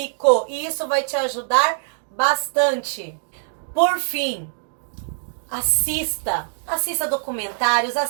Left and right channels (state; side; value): silent; left; digital silence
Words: E isso vai te ajudar bastante. Por fim, assista documentários,